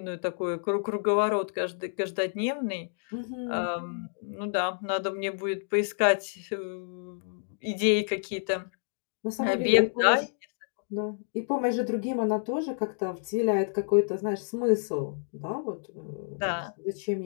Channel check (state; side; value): silent; right; digital silence